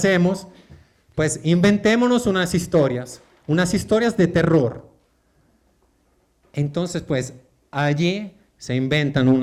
Pues inventémonos unas historias de terror. Entonces, pues allí se inventan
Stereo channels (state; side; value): identical; both; correlation 1.00